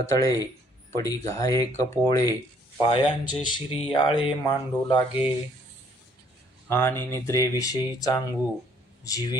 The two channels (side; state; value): both; normal; correlation 0.63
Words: पडी घाये कपोळे, पायांचे शिरियाळे मांडू लागे. आणि निद्रेविषयी चांगू,